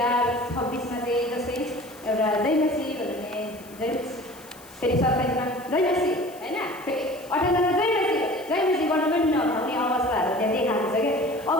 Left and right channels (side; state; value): left; noise; hiss, 21 dB below the sound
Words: चाहिँ जस्तै एउटा जय मसी भन्ने जय फेरि 27मा जय मसी होइन, फेरि 58मा जय मसी गर्नु पनि नभउने अवस्थाहरू त्यहाँ देखाएको छ क्या।